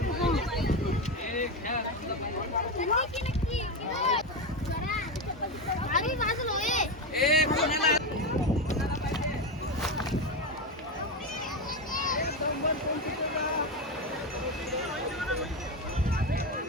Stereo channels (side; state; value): both; normal; correlation 0.14